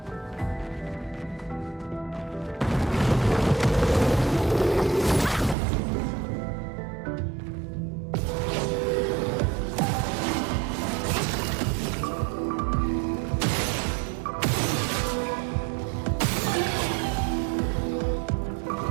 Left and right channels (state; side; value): drops out; left; at 5.6 s